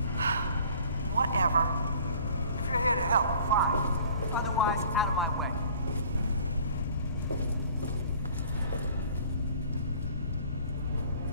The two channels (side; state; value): both; inverted; correlation -0.51